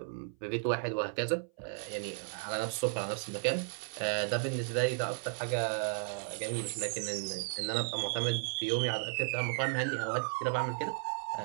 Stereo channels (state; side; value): silent; left; 55 dB below the other